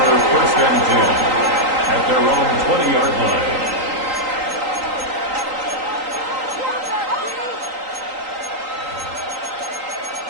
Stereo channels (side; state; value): left; late; 3.8 ms